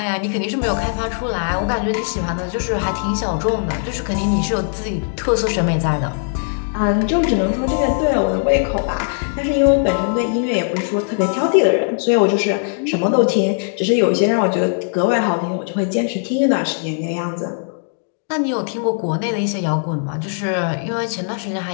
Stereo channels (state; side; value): silent; right; digital silence